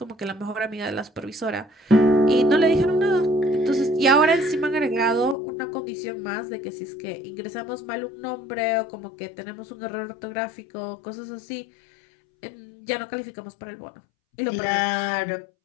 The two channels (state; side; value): drops out; right; at 5.4 s